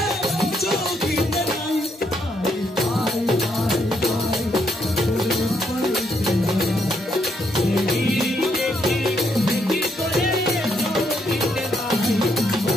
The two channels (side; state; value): both; normal; correlation 0.75